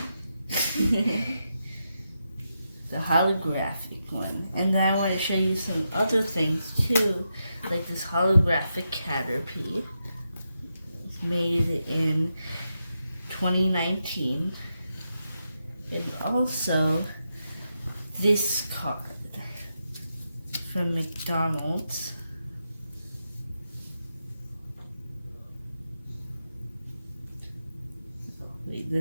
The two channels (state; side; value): inverted; both; correlation -0.86